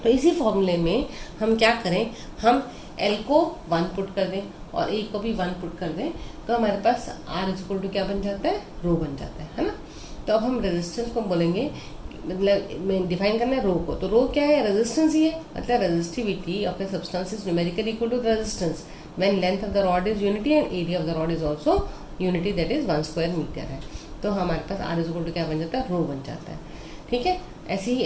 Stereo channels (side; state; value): both; identical; correlation 1.00